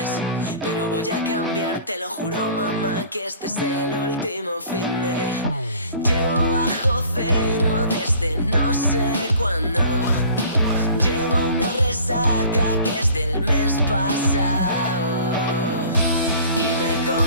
Pero voy a cambiar, te lo juro mamá, que este es el último fin de. Llevo bajo cero desde no sé cuándo. Llevo una resaca que es del mes pasado. Y me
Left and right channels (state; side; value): inverted; both; correlation -0.48